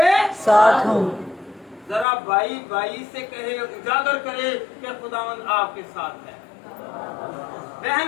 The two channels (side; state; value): right; drops out; at 2.1 s